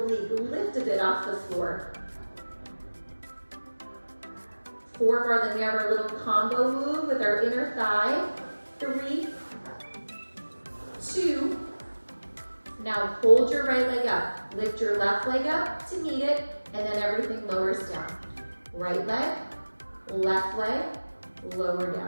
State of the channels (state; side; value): inverted; both; correlation -1.00